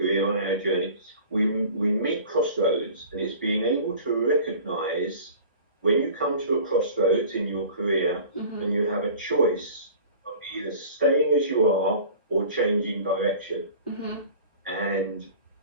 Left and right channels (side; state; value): both; inverted; correlation -0.43